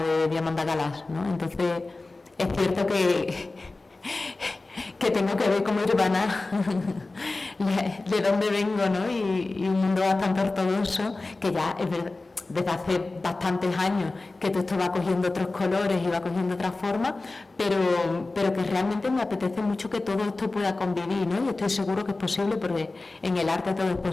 de Diamanda Galás, ¿no? Entonces, es cierto que tengo que ver como urbana de dónde vengo, ¿no? Y un mundo bastante ortodoxo, que ya es verdad, desde hace bastantes años que todo esto va cogiendo otros colores y va cogiendo otras formas, pero que realmente me apetece mucho que todo esto pueda convivir, ¿no? Y estoy seguro que es posible, porque en el arte todo es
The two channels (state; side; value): quieter; right; 3.3 dB